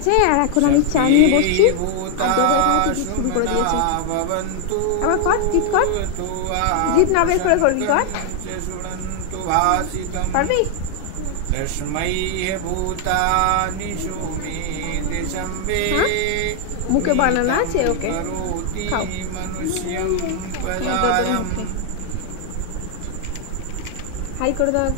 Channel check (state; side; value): different; both; correlation 0.00